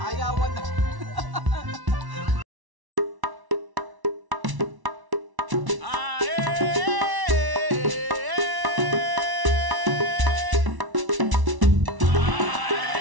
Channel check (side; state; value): left; late; 1.1 ms